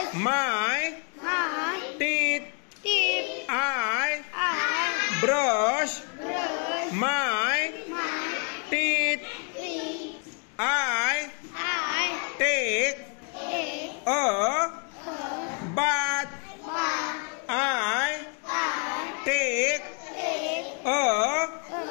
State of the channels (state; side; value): quieter; right; 38.8 dB